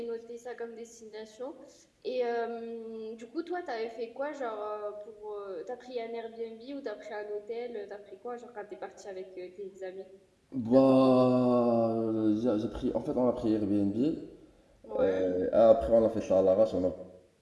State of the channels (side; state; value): both; identical; correlation 1.00